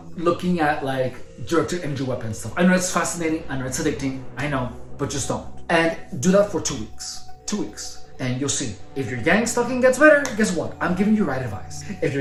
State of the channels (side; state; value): both; identical; correlation 1.00